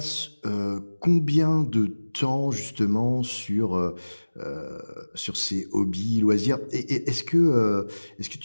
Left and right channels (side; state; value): both; inverted; correlation -1.00